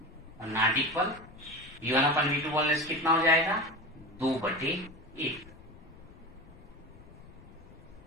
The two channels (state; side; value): noise; left; rumble, 21 dB below the sound